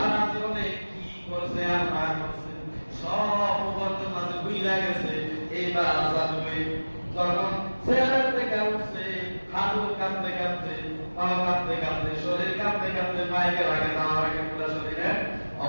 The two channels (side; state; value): both; inverted; correlation -1.00